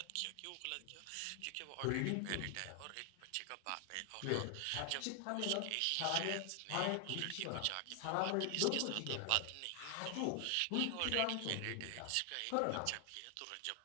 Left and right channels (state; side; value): different; both; correlation 0.00